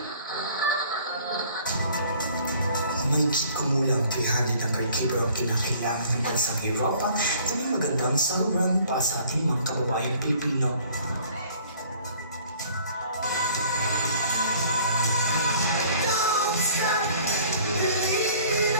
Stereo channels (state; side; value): inverted; both; correlation -0.54